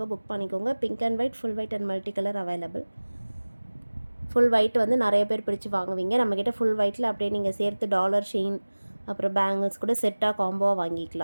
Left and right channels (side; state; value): both; inverted; correlation -1.00